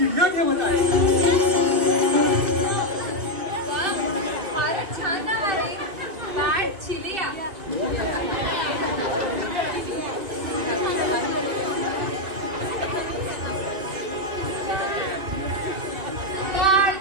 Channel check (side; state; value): left; late; 2.6 ms